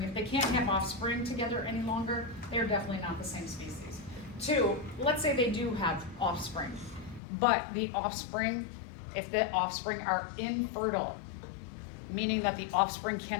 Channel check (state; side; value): drops out; right; at 7.2 s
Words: If they can't have offspring together any longer, they're definitely not the same species. 2, let's say they do have offspring, but the offspring, if the offspring are infertile, meaning that the offspring